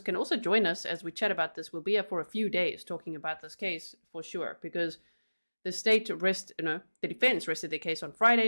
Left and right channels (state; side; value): inverted; both; correlation -1.00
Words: can also join us as we chat about this. We'll be here for a few days talking about this case for sure, because the defense rested their case on